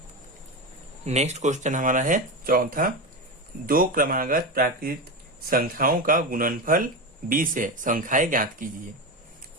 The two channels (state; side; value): normal; both; correlation 0.18